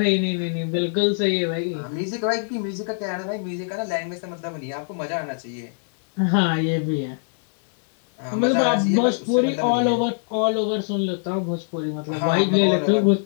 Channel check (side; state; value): right; silent; digital silence